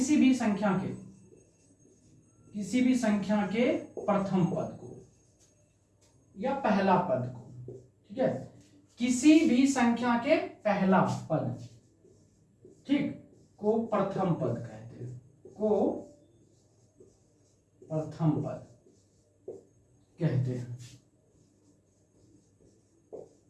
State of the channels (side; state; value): both; identical; correlation 1.00